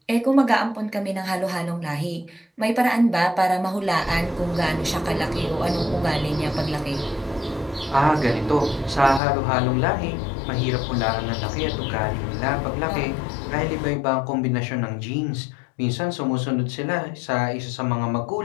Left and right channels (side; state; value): right; drops out; at 9.2 s